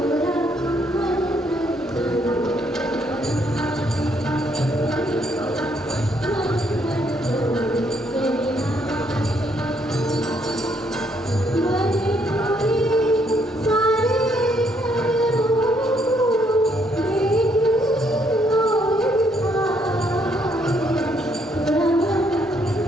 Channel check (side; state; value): both; normal; correlation 0.71